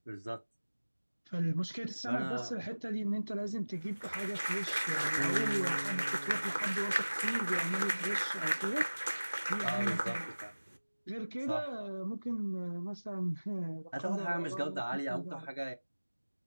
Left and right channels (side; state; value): both; inverted; correlation -1.00